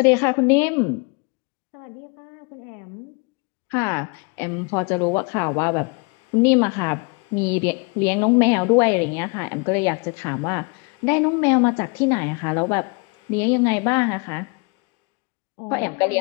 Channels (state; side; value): quieter; right; 32.5 dB